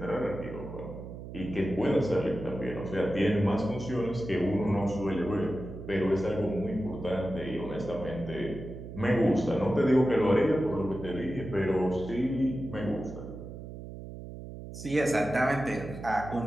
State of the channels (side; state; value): right; noise; hum, 11 dB below the sound